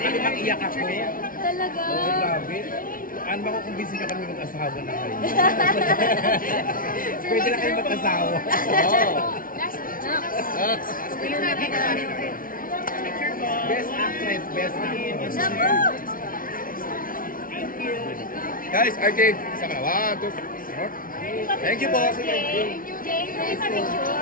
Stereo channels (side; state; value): right; late; 0.41 ms